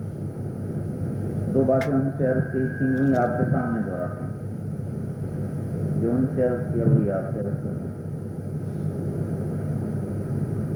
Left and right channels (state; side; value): identical; both; correlation 1.00